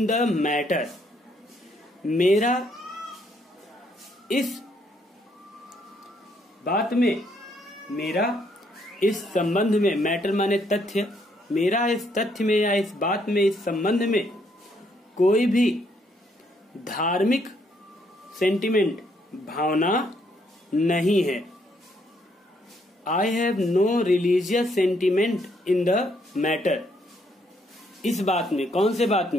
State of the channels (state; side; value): normal; both; correlation 0.71